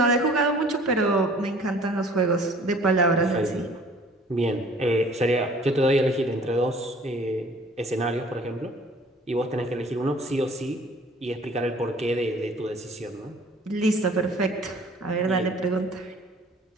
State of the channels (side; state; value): both; normal; correlation 0.52